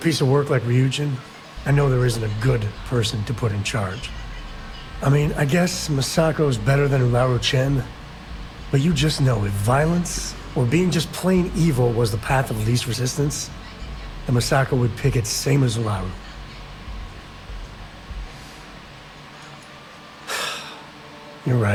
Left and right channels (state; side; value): identical; both; correlation 1.00